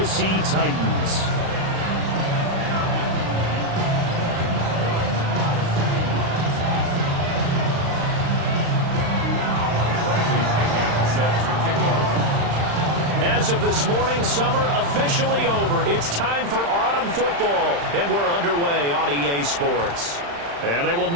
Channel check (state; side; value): late; left; 35 ms